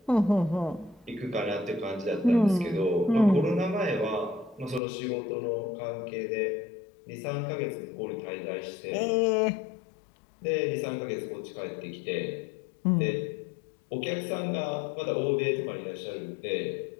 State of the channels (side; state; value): right; drops out; at 4.8 s